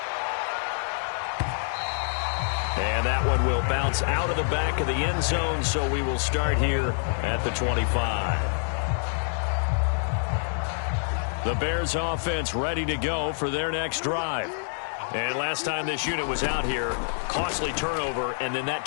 And that one will bounce out of the back of the end zone, so we will start here at the 25. The Bears offense ready to go for their next drive. And last time this unit was out here, costly turnover, and then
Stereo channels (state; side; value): silent; right; 60 dB below the other